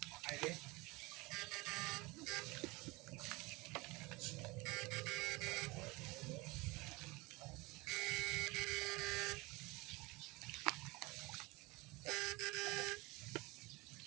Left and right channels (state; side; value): quieter; left; 23.8 dB